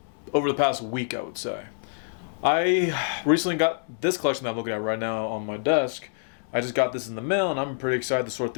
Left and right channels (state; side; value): silent; right; digital silence